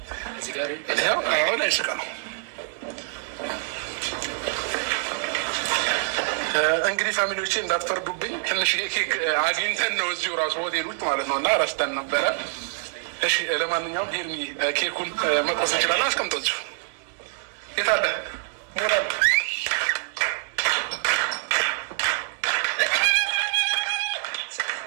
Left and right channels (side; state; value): left; silent; 61 dB below the other